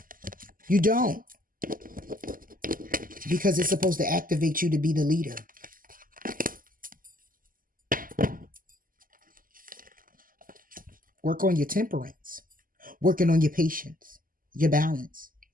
You don't. Because it's supposed to activate you to be the leader. Work on your temperance. Working on your patience, your balance,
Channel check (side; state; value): left; late; 0.41 ms